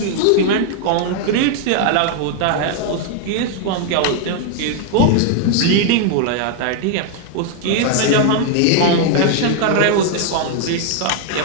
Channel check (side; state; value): both; different; correlation 0.00